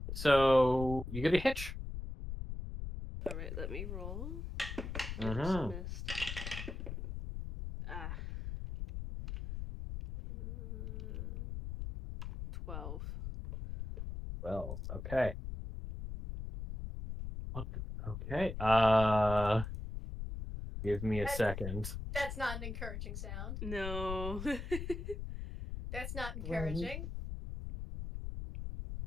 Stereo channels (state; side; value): noise; left; rumble, 6 dB below the sound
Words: So you get a hitch. All right, let me roll. Oops, Mm-hmm. missed. Ah. 12. Well, okay. Okay. Give me a second. That's not an encouraging sound. No. That's not encouraging.